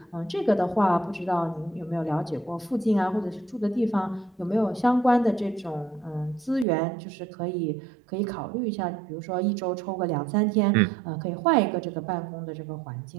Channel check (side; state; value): left; drops out; at 6.7 s